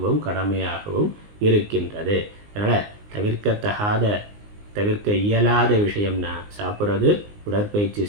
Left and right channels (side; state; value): left; late; 19 ms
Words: கடமையாகவும் இருக்கின்றது. அதனால் தவிர்க்க இயலாத விஷயம்னா சாப்பிட்றது, உடற்பயிற்சி